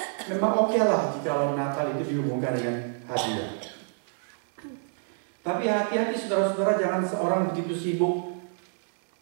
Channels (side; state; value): left; silent; 57 dB below the other